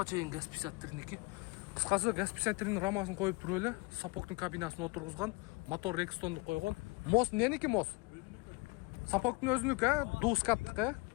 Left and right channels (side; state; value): right; quieter; 27.5 dB